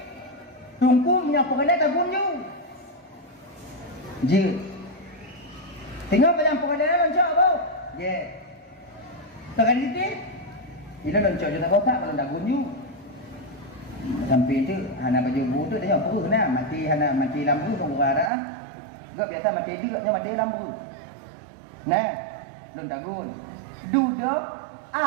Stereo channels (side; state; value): left; drops out; at 18.3 s